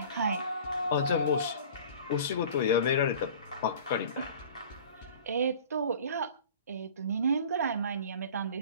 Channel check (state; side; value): inverted; both; correlation -0.44